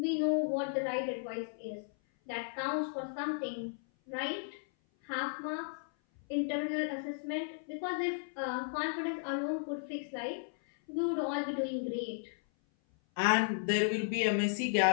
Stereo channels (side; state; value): right; silent; 55 dB below the other